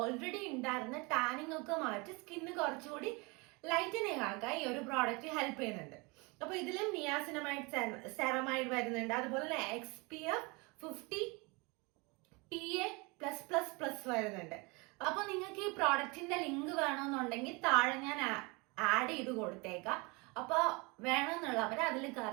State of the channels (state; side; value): quieter; left; 27.7 dB